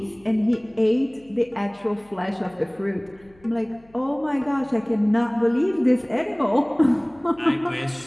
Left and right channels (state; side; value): noise; left; hum, 29 dB below the sound